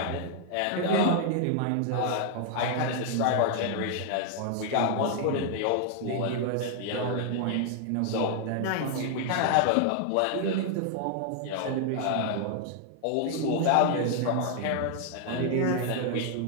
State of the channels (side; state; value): both; different; correlation 0.00